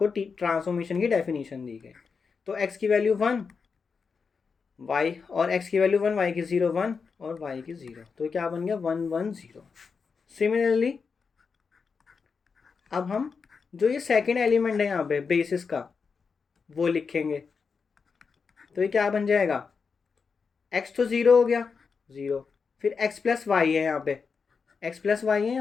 ट्रांसफॉर्मेशन की डेफिनेशन दी गई। तो एक्स की वैल्यू 1, वाई और एक्स की वैल्यू 1, वाई की 0 1 और वाई की 0, तो क्या बन गया 1 1 0। सिमिलरली अब हम जो ये सेकेंड एलिमेंट है यहाँ पे बेसिस का वो लिखेंगे। तो ये क्या बन जाएगा, x तो 0 हो गया 0, फिर x प्लस वाई है यहाँ पे, x प्लस वाई है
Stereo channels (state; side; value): quieter; right; 5.4 dB